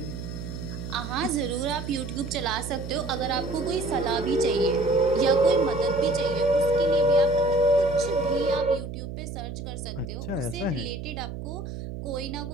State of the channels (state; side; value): noise; right; hum, 8 dB below the sound